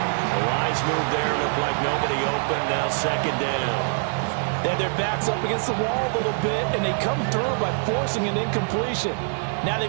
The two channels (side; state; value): left; silent; digital silence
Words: The wise move there. Looked like nobody open. Now 2nd down. They have their backs up against the wall a little bit, and they come through by forcing an incompletion. Now